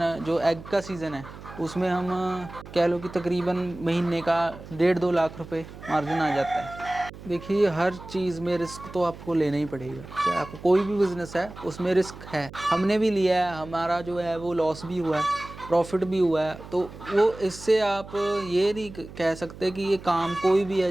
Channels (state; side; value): noise; right; hum, 15 dB below the sound